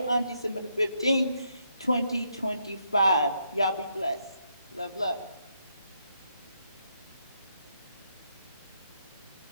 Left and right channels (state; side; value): inverted; both; correlation -0.78